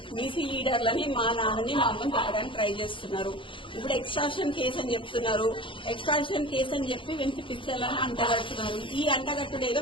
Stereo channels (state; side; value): late; right; 0.25 ms